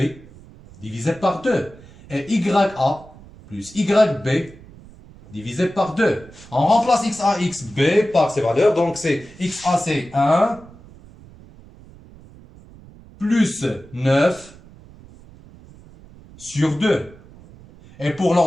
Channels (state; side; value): noise; right; rumble, 22 dB below the sound